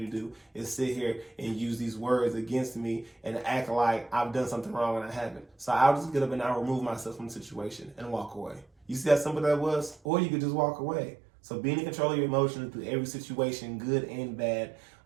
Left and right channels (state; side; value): drops out; left; at 10.0 s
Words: to do is sit here and use these words against me and act like I've done something wrong when I haven't. So I'll just get up and I'll remove myself from the situation and walk away. You see how simple that was? Or you could just walk away. So being in control of your emotions through every situation, good and bad,